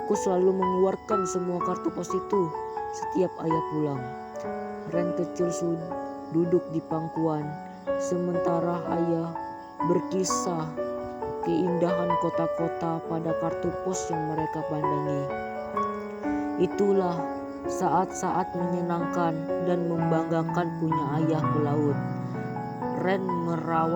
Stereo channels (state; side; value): identical; both; correlation 1.00